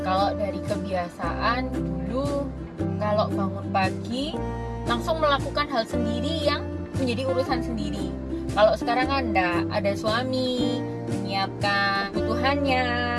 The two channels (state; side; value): identical; both; correlation 1.00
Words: Kalau dari kebiasaan dulu, kalau bangun pagi langsung melakukan hal sendiri yang menjadi urusan sendiri. Kalau sekarang kan ada suami menyiapkan kebutuhannya,